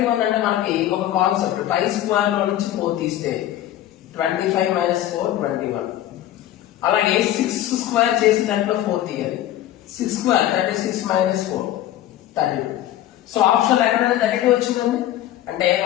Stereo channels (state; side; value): quieter; right; 13.0 dB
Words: అంటే మనకి ఒక కాన్సెప్ట్ 5 స్క్వేర్ లో నుంచి 4 తీస్తే 25 మైనస్ 4 21. అలాగే 6 స్క్వేర్ చేసి దాంట్లో 4 తీయాలి. 6 స్క్వేర్ 36 మైనస్ 4 32. సో ఆప్షన్ ఎక్కడైనా 32 వచ్చిందండి, అంటే